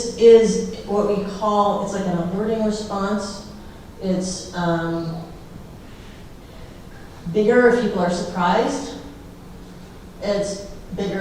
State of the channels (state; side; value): identical; both; correlation 1.00